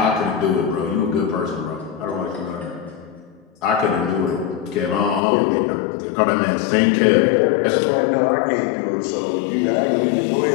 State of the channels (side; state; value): right; drops out; at 5.2 s